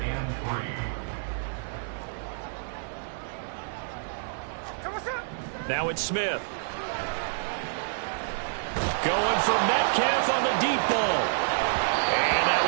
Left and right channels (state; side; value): silent; left; 59 dB below the other